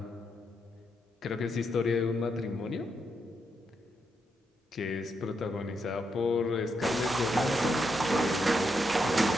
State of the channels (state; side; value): normal; both; correlation 0.81